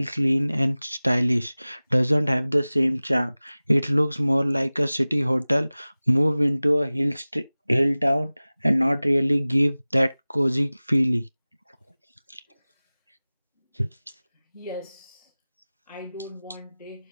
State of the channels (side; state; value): both; inverted; correlation -0.99